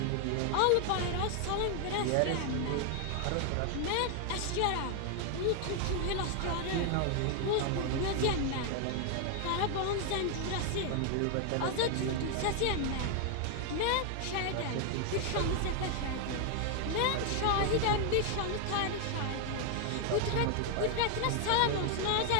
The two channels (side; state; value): both; different; correlation 0.00